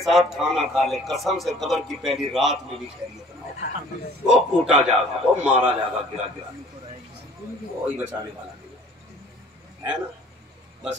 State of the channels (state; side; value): normal; both; correlation 0.53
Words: साथ खाना खा ले कसम से कब्र की पहली रात में भी खैरियत ना हो, वो कूटा जाएगा, वो मारा जाएगा, गिरा गिरा वही बचाने वाला है ना। बस